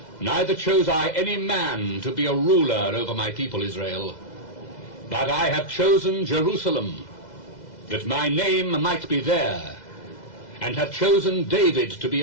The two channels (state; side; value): late; right; 2.0 ms